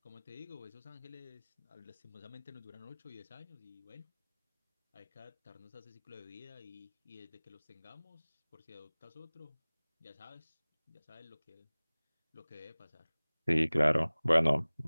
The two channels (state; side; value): inverted; both; correlation -1.00